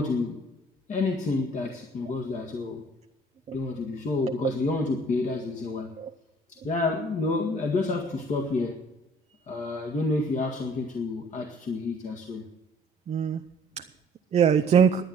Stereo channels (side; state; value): both; normal; correlation 0.55